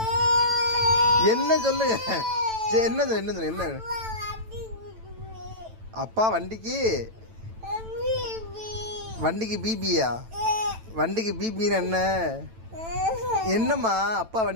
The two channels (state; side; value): late; left; 9.0 ms